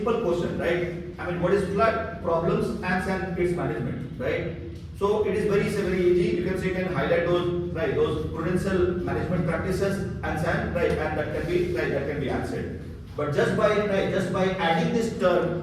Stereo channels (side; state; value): both; identical; correlation 1.00